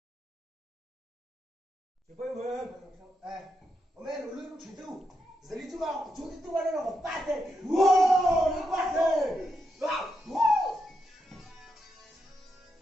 Chị quay về. Ông em lùi lúc chuyển tu. Giờ đi chú vào, chú đi tu vào đây là một bát thế. Wow, nó bát thế. Wow.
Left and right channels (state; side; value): normal; both; correlation 0.83